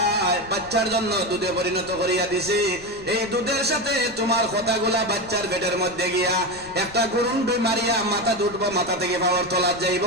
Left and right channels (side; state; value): left; noise; rumble, 20 dB below the sound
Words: বাচ্চার জন্য দুধে পরিণত করিয়া দিছি। এই দুধের সাথে তোমার কথাগুলা বাচ্চার পেটের মধ্যে গিয়া একটা গুরুন্ডুই মারিয়া মাথা দুটবো, মাথা থেকে পাওয়ার তলা যাইব,